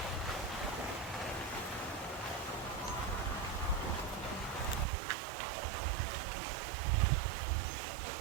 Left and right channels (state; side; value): drops out; left; at 4.9 s